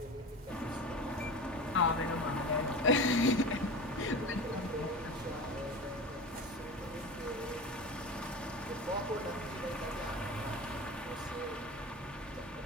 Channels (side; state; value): both; normal; correlation 0.30